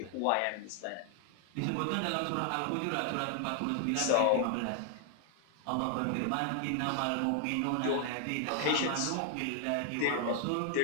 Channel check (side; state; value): both; different; correlation 0.00